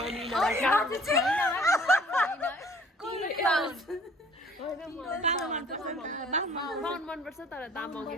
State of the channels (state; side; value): normal; both; correlation 0.54